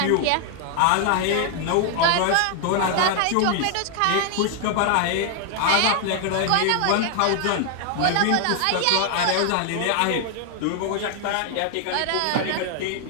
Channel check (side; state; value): both; different; correlation 0.00